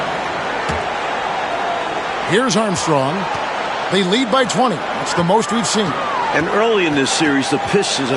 Here's Armstrong. They lead by 20. That's the most we've seen. And early in this series, the Pistons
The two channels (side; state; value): both; identical; correlation 1.00